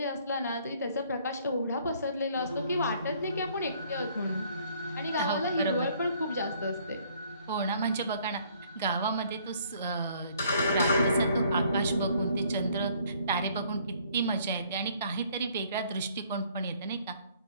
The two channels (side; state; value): both; inverted; correlation -0.61